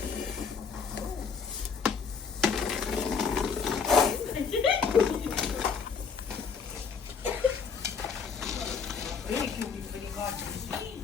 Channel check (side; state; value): right; quieter; 5.8 dB